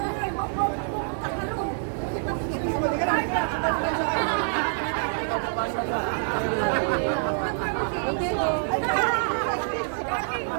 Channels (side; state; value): left; silent; digital silence